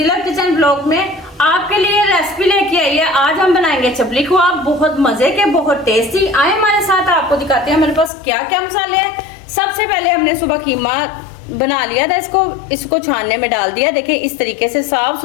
kitchen blog में आपके लिए रेसिपी लेके आई है। आज हम बनाएंगे चपली कबाब, बहुत मजे के, बहुत टेस्टी। आए हमारे साथ, आपको दिखाते हैं हमारे पास क्या क्या मसाले हैं। सबसे पहले हमने सुबह कीमा बना लिया था, इसको छानने में डाल दिया। देखिए इस तरीके से साफ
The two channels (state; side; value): drops out; right; at 8.1 s